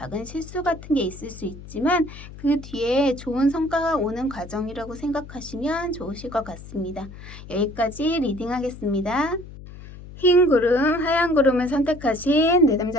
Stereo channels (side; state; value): left; noise; hum, 15 dB below the sound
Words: 실수 같은 게 있을 수 있지만 그 뒤에 좋은 성과가 오는 과정이라고 생각하시면 좋으실 것 같습니다. 여기까지 리딩하겠습니다. 흰 구름, 하얀 구름을 선택하신